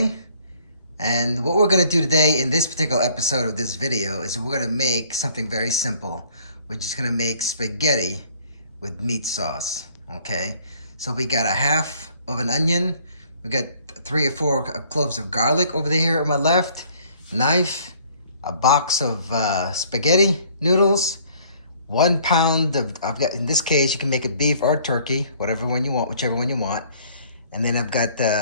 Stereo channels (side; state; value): both; inverted; correlation -0.58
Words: and what we're going to do today in this particular episode of this video is we're going to make something very simple. We're just going to make spaghetti with meat sauce. Okay, so we got a half of an onion, we got 3 or 4 cloves of garlic over there on my left, knife, a box of spaghetti noodles, 1 pound of, I've got, in this case, you can make it beef or turkey, whatever one you want, whichever one you want. And then I've got,